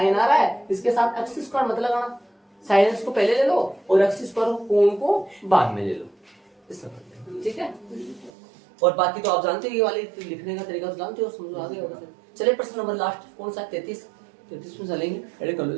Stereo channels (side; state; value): left; drops out; at 8.3 s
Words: आ रहा है, इसके साथ एक्स स्क्वायर मत लगाना, साइन एक्स को पहले ले लो और एक्स स्क्वायर कोण को बाद में ले लो, ठीक है। और बाकी तो आप जानते हो, ये वाले लिखने का तरीका तो जानते हो, समझो आ गया होगा। चलिए प्रश्न नंबर लास्ट कौन सा, 33 में चलेंगे, एड कर लो